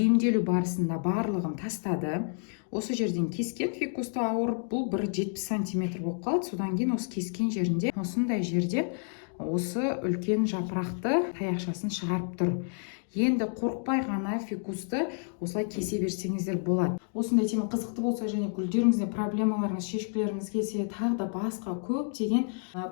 барысында барлығын тастады. Осы жерден кескен фикусты ауырып, бұл 1,70 сантиметр болып қалды. Содан кейін осы кескен жерінде, осындай жерде осы үлкен жапырақты таяқшасын шығарып тұр. Енді қорықпай ғана фикусты осылай кесе берсеңіздер болады. Осындай тема қызықты болса және гүлдеріңізде проблемаларыңыз, шешкілеріңіз келсе, тағы да басқа көптеген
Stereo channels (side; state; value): right; silent; 58 dB below the other